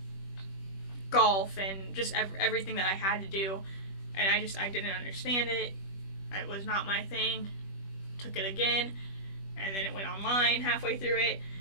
golf and just everything that I had to do. And I didn't understand it. It was not my thing. Took it again, and then it went online halfway through it.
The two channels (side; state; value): right; late; 21 ms